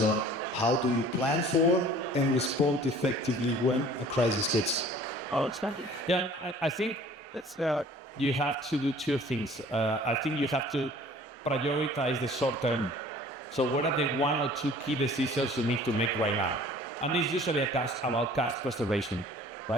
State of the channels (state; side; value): normal; both; correlation 0.50